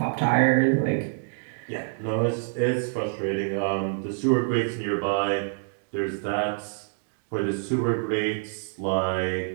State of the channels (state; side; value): silent; left; digital silence